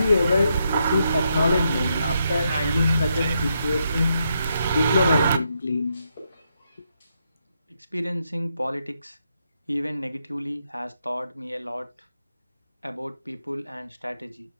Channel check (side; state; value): both; inverted; correlation -0.80